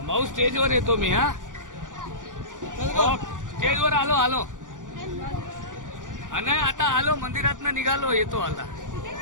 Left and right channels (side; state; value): left; late; 0.87 ms